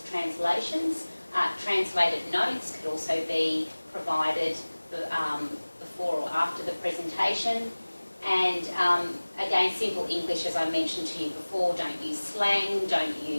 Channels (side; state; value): both; inverted; correlation -1.00